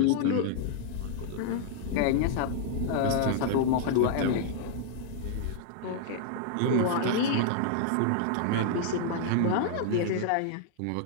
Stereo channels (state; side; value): different; both; correlation -0.01